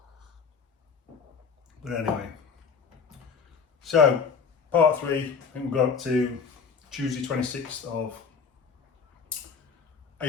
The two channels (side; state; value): right; quieter; 5.7 dB